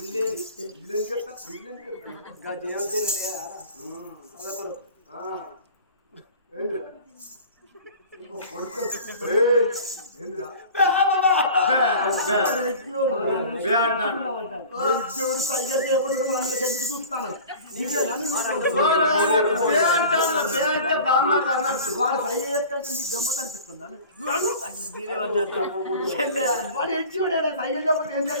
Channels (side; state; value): both; inverted; correlation -0.41